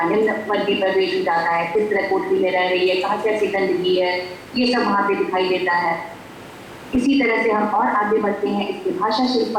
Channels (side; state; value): both; identical; correlation 1.00